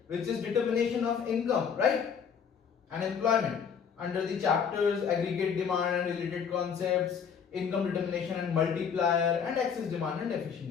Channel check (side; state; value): right; quieter; 7.0 dB